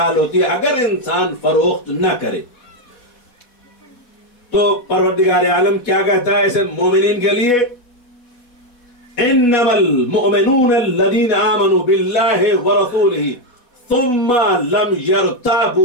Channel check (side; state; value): right; late; 4.1 ms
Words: होती है, अगर इंसान फरोख्त न करे तो परवरदिगार आलम क्या कहता है ऐसे मोमिनीन के लिए? इन्नमल मुअमिनून अल्लज़ीना आमनू बिल्लाहि व रसूलिही सुम्मा लम